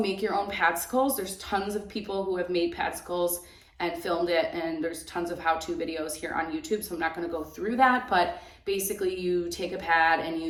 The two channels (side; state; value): both; identical; correlation 1.00